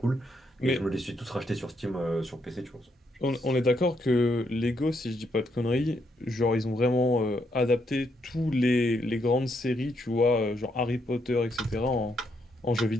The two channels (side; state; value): both; normal; correlation 0.77